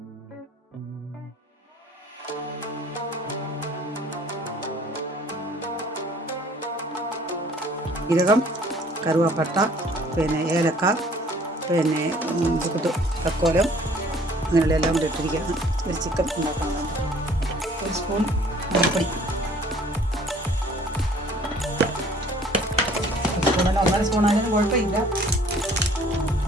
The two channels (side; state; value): both; normal; correlation 0.55